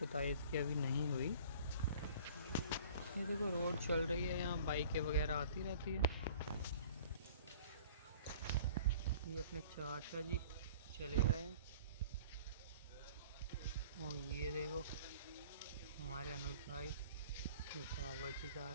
इसकी अभी नहीं हुई। ये देखो रोड चल रही है, यहाँ बाइकें वगैरह आती रहती है। ये अपने चाचा जी चले गए हैं और ये देखो हमारे अनुज भाई बाबा जी जा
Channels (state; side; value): inverted; both; correlation -0.49